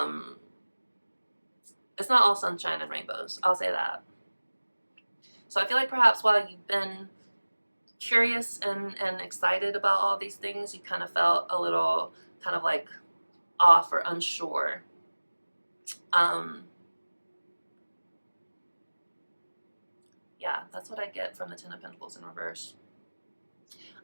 it's not all sunshine and rainbows, I'll say that. So I feel like perhaps while you've been curious and excited about all these things, you kind of felt a little kind of like off or unsure. Yeah, that's what I get from the Ten of Pentacles in reverse.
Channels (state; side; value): inverted; both; correlation -1.00